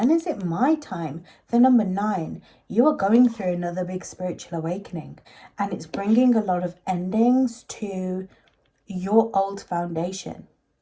is it my time? The number 9, you are going through another big spiritual awakening, and it's bringing a lot of endings to your old foundation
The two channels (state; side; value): identical; both; correlation 1.00